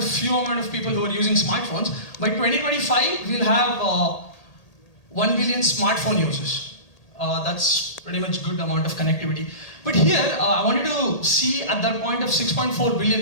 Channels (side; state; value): right; late; 1.8 ms